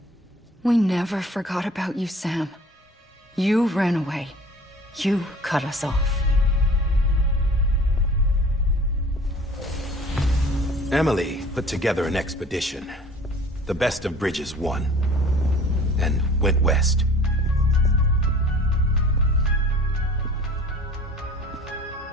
We never forgot about you, Sam. You ran away. You cut us off. Emily put together an expedition. The best of Bridges won. And went west.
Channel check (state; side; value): normal; both; correlation 0.47